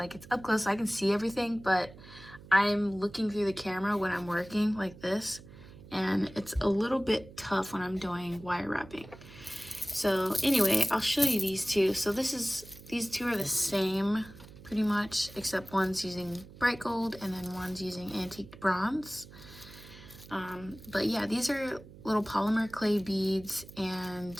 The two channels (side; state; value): right; noise; hum, 18 dB below the sound